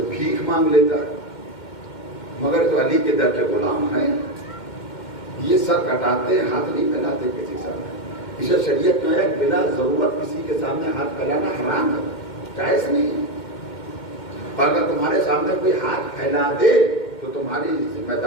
بھیک مانگ لیتا، مگر تو علی کے در کے غلام ہیں، یہ سر کٹاتے ہاتھ نہیں پھیلاتے کسی سامنے، اسے شریعت میں ہے بلا ضرورت کسی کے سامنے ہاتھ پھیلانا حرام ہے، جائز نہیں ہے۔ اگر تمہارے سامنے کوئی ہاتھ پھیلا دے تو تمہاری ذمہ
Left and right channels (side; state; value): right; late; 2.1 ms